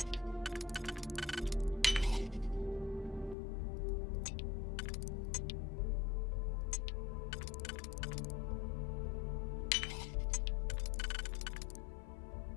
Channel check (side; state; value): right; drops out; at 3.4 s